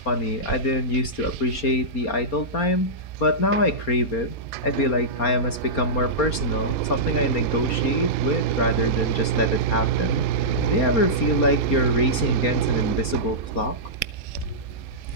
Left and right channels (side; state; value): right; late; 4.3 ms